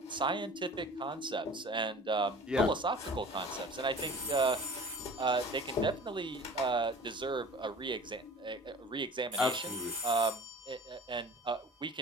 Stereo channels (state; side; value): normal; both; correlation 0.42